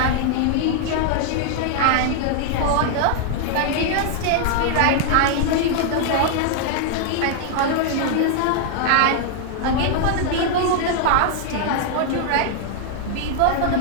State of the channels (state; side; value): different; both; correlation 0.00